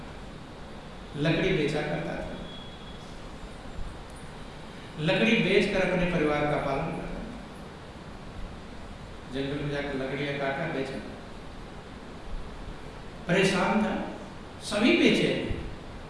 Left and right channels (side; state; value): both; identical; correlation 1.00